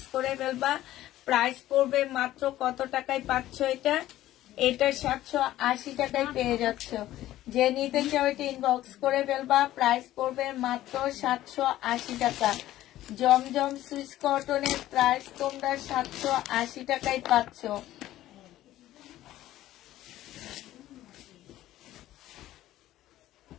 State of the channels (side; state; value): right; quieter; 14.4 dB